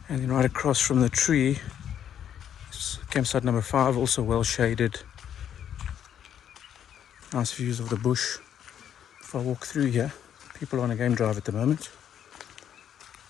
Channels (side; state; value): right; quieter; 9.5 dB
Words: And then right across from the tree is campsite number 5, also well shaded. Nice views of the bush. If I walk through here, people are on a game drive at the moment.